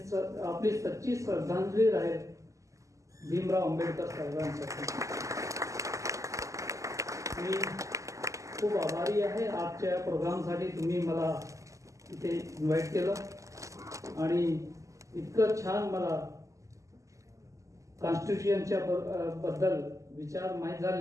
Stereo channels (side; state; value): left; late; 0.16 ms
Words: आपली सच्ची श्रद्धांजली राहील भीमराव आंबेडकर साहेबांसाठी. मी खूप आभारी आहे आजच्या प्रोग्रामसाठी. तुम्ही मला इथे इन्व्हाइट केलं आणि इतकं छान मला कॉन्स्टिट्यूशनच्या बद्दल विचार माहीत